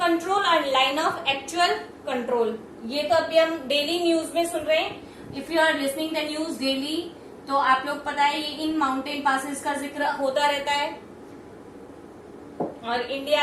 और लाइन ऑफ एक्चुअल कंट्रोल। ये तो अभी हम डेली न्यूज में सुन रहे हैं। If you are listening the news daily, तो आप लोग पता है ये इन माउंटेन पासेस का जिक्र होता रहता है। और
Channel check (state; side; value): identical; both; correlation 1.00